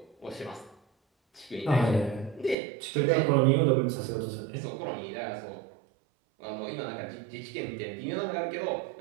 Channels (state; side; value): drops out; left; at 2.6 s